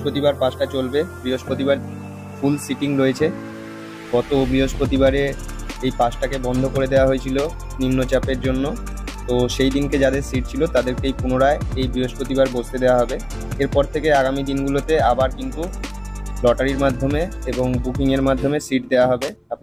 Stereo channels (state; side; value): identical; both; correlation 1.00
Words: 5টা চলবে, বৃহস্পতিবার ফুল সিটিং রয়েছে। গত বৃহস্পতিবারে এই 5টাকে বন্ধ করে দেওয়া হয়েছিল নিম্নচাপের জন্য। তো সেই দিনকে যাদের সিট ছিল তাদেরকেই পুনরায় এই বৃহস্পতিবার বসতে দেওয়া হবে। এরপর থেকে আগামী দিনগুলোতে আবার কিন্তু লটারির মাধ্যমে এবং বুকিংয়ের মাধ্যমে সিট দেওয়া হবে।